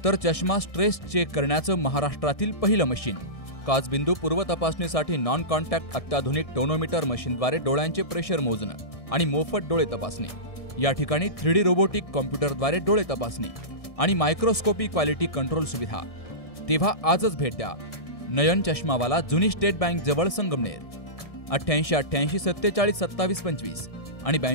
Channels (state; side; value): late; right; 1.6 ms